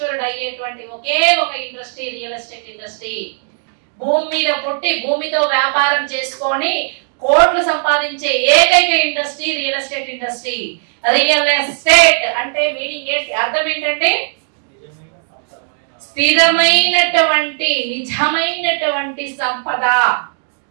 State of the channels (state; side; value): silent; left; digital silence